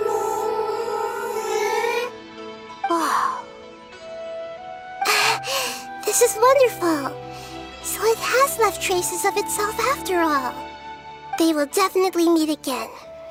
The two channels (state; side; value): identical; both; correlation 1.00